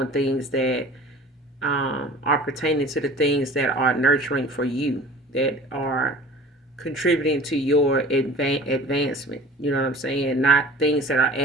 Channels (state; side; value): normal; both; correlation 0.44